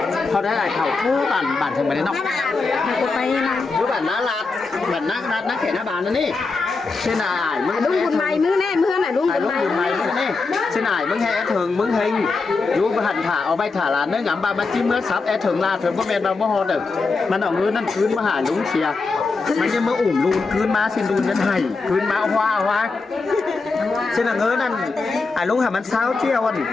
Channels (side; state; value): right; quieter; 4.1 dB